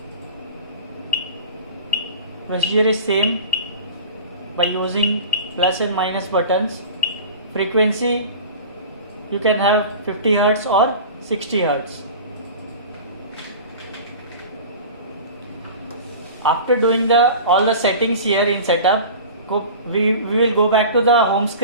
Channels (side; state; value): both; inverted; correlation -0.36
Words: Procedure is same by using plus and minus buttons. Frequency you can have 50 Hz or 60 Hz. After doing all the settings here in setup, we will go back to the home